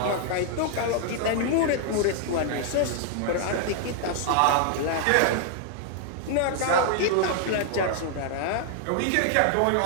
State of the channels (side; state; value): both; different; correlation 0.00